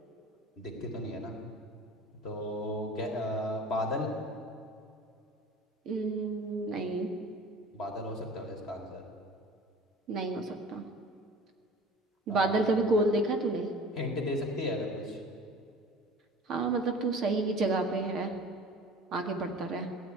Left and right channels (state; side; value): normal; both; correlation 0.42